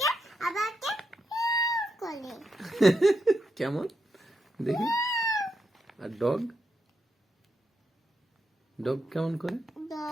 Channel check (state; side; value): normal; both; correlation 0.83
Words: আবার করে কেমন দেখি? আর ডগ ডগ কেমন করে?